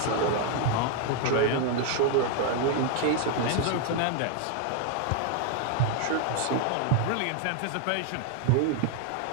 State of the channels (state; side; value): different; both; correlation 0.01